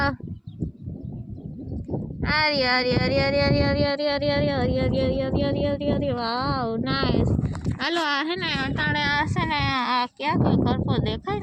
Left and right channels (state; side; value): identical; both; correlation 1.00